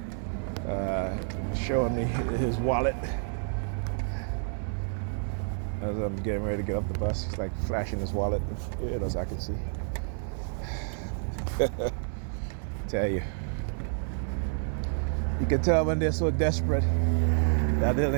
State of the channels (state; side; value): silent; left; 57 dB below the other